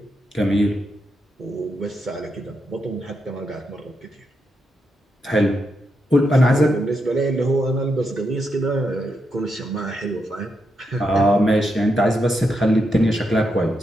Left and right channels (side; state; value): both; normal; correlation 0.83